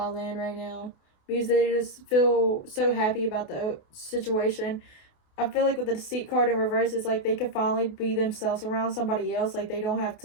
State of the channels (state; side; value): late; right; 28 ms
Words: land right now because they just feel so happy about the situation. I feel like with the Deceit card in reverse, it's like they can finally be themselves around somebody else. Like, they don't have